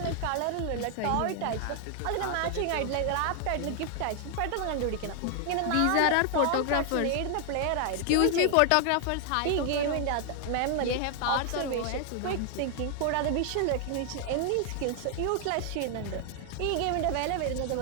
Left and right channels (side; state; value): both; different; correlation 0.00